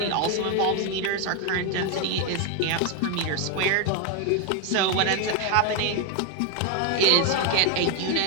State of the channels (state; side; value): different; both; correlation 0.01